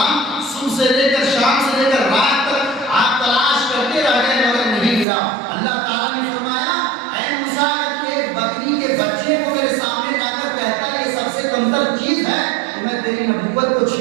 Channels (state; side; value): drops out; left; at 5.1 s